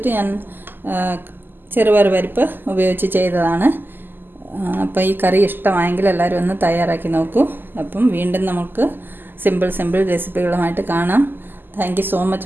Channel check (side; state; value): left; late; 0.093 ms